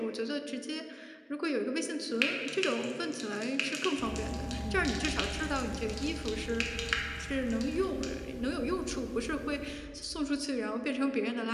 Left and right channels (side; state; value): both; identical; correlation 1.00